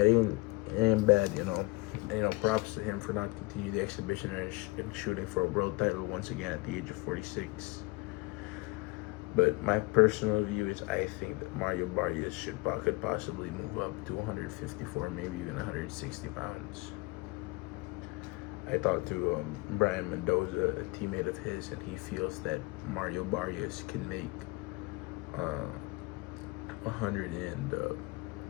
it ain't bad, you know. And, you know, props to him for not continuing the exhibition and shooting for a world title once again at the age of 46. But my personal view is I think that Mario Barrios could possibly move up to 154, maybe even 160 pounds. I talked to Brian Mendoza, a teammate of his, and he feels that Mario Barrios can make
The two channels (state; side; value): quieter; right; 24.6 dB